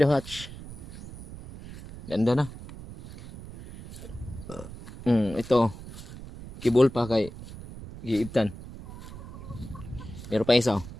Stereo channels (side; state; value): right; noise; rumble, 13 dB below the sound